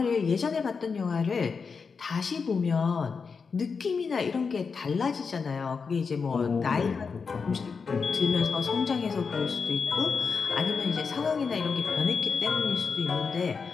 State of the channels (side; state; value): right; quieter; 5.3 dB